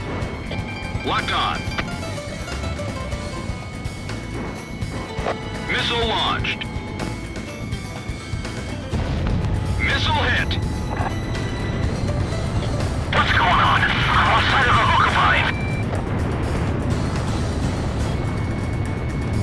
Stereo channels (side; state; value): both; identical; correlation 1.00